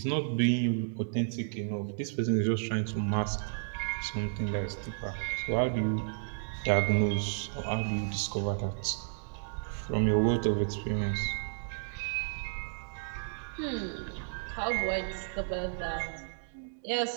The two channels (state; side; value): silent; left; digital silence